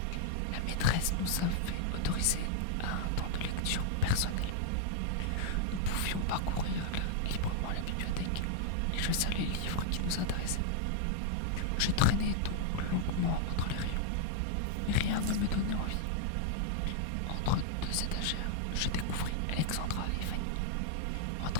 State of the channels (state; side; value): different; both; correlation -0.01